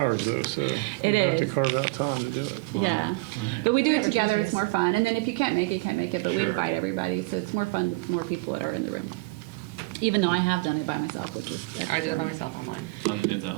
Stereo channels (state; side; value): quieter; left; 24.9 dB